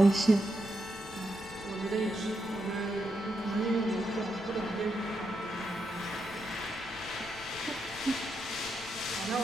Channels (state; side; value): noise; left; rumble, 20 dB below the sound